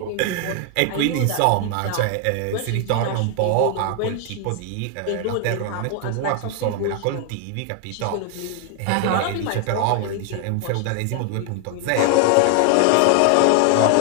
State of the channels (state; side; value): different; both; correlation 0.00